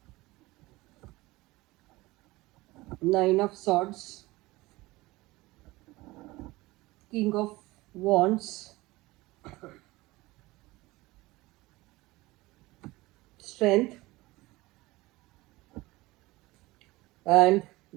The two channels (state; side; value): quieter; left; 20.4 dB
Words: Nine of Swords, King of Wands, Strength, and